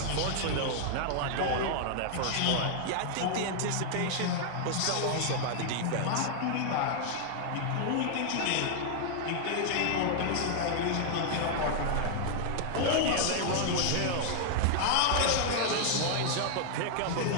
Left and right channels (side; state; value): both; different; correlation -0.01